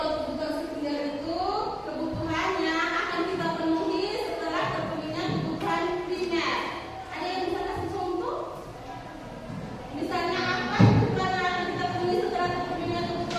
kebutuhan sekunder itu kebutuhannya akan kita penuhi setelah terpenuhinya kebutuhan primer. Ada yang bisa kasih contoh? Misalnya apa kebutuhan yang akan kita penuhi setelah terpenuhinya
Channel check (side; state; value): both; identical; correlation 1.00